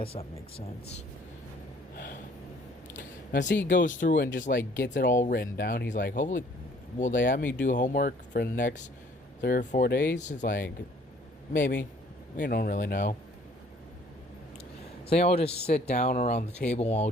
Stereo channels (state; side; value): normal; both; correlation 0.58